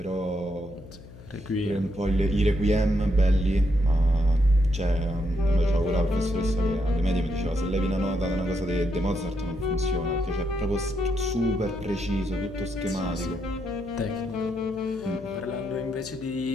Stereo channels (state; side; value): noise; left; hum, 18 dB below the sound